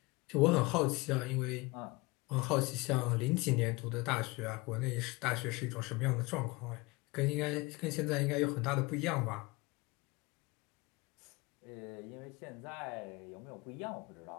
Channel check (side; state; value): right; quieter; 24.1 dB